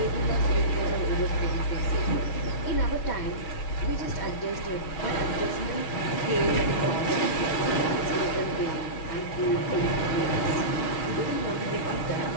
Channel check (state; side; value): late; right; 6.3 ms